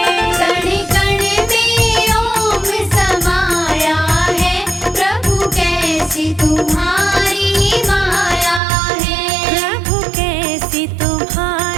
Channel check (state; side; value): drops out; left; at 8.6 s